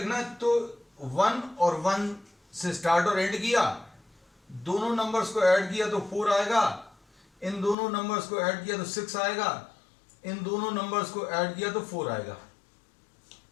है तो 1 और 1 से स्टार्ट और एंड किया, दोनों नंबर्स को ऐड किया तो 4 आएगा, इन दोनों नंबर्स को ऐड किया तो 6 आएगा, इन दोनों नंबर्स को ऐड किया तो 4 आएगा.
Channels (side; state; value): right; drops out; at 7.8 s